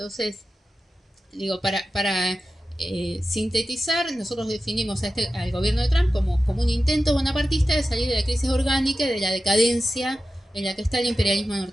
digo, para sintetizar, nosotros definimos al gobierno de Trump como un intento bonapartista de salir de la crisis orgánica y de la decadencia en la que está el imperialismo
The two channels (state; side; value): normal; both; correlation 0.93